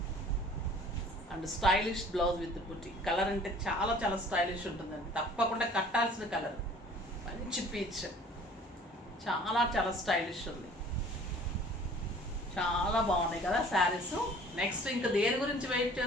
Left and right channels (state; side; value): normal; both; correlation 0.50